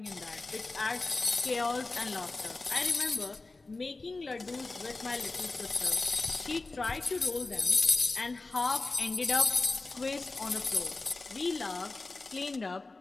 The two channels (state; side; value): quieter; right; 3.4 dB